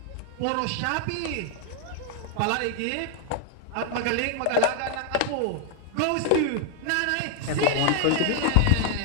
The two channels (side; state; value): both; different; correlation 0.00